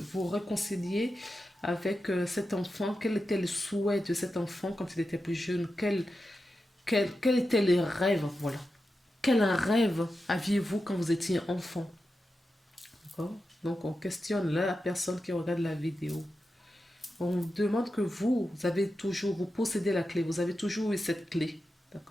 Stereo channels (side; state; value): both; normal; correlation 0.90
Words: réconcilier avec cet enfant. Quel était le souhait de cet enfant quand il était plus jeune? Quel étaient les rêves? Voilà. Quel rêve aviez-vous quand vous étiez enfant? D'accord? Donc on questionne la personne qui regarde la vidéo. On demande que vous possédez la clé. Vous avez toujours eu cette clé.